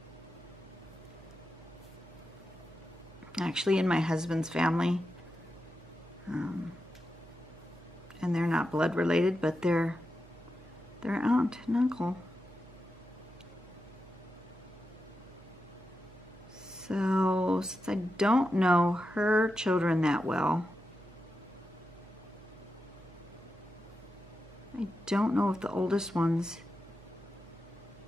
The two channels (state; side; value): noise; right; hum, 22 dB below the sound